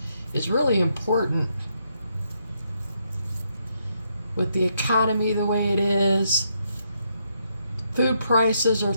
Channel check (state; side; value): inverted; both; correlation -0.76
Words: is really important. With the economy the way it is, food prices are